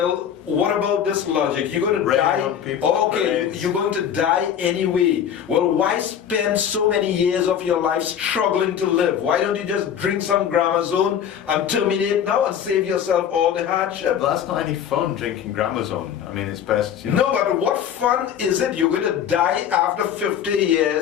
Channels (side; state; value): right; quieter; 8.9 dB